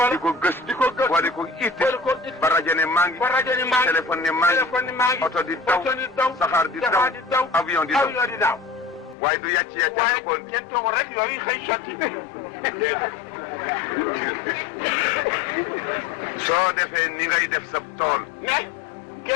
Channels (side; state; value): right; drops out; at 9.2 s